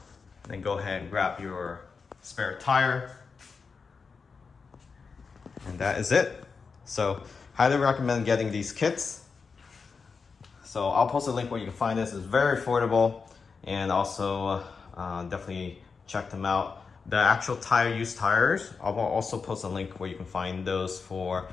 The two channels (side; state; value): right; quieter; 5.1 dB